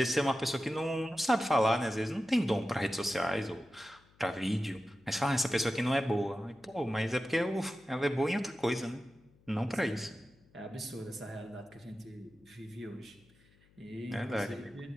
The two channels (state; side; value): noise; left; hum, 30 dB below the sound